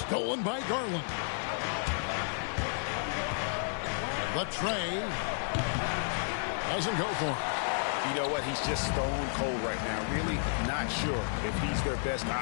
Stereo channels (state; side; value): silent; right; 56 dB below the other